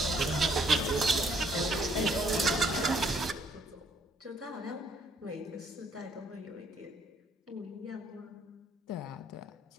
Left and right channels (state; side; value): normal; both; correlation 0.66